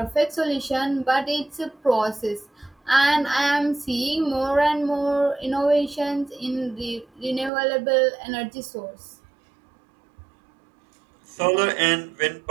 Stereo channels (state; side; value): drops out; left; at 7.5 s